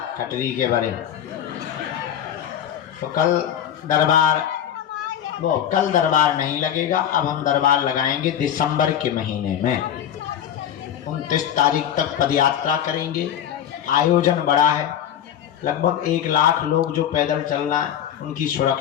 कटरी के बारे। तो कल दरबार नहीं लगेगा। अब हम दरबार लगाएंगे दिसंबर के महीने में। 29 तारीख तक पदयात्रा करेंगे। आयोजन बड़ा है, लगभग 1 लाख लोग जो पैदल चलना है, उनकी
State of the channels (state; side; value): quieter; right; 10.0 dB